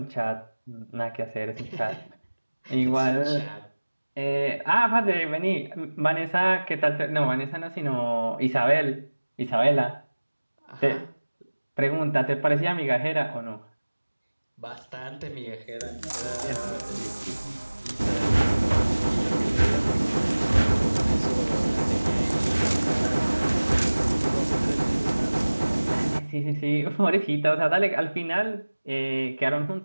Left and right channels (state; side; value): inverted; both; correlation -1.00